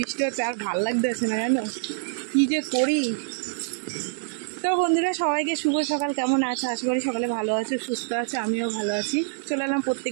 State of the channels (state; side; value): silent; left; digital silence